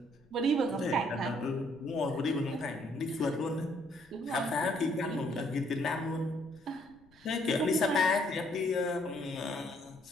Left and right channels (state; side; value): noise; left; rumble, 29 dB below the sound